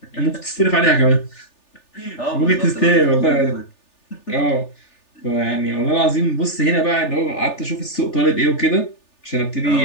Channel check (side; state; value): right; late; 3.4 ms